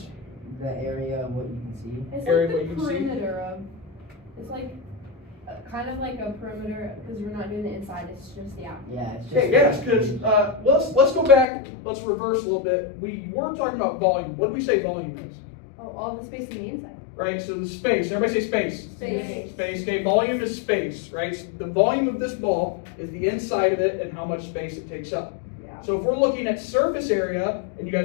The area of what you can see. It's Area like where the you can see. perimeter of, it's like, kind of like a perimeter, because we're not doing the inside, it's just the outside. Yeah, it's just. Okay, yes, because let's go back. Let's reverse a little bit. We weren't talking about volume. What did we say volume is? Oh, all the space on the inside. Right. So the space. Everybody say space. Space. Space. Okay. Volume is space. Right. So the volume of this ball is the inside of it and how much space it takes up. Yeah. So if we're looking at surface area, and you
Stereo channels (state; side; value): drops out; right; at 11.5 s